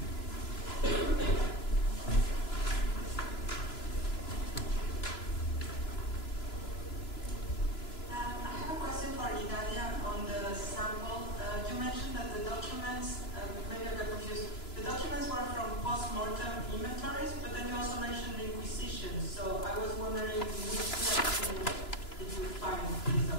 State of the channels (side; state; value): right; late; 3.0 ms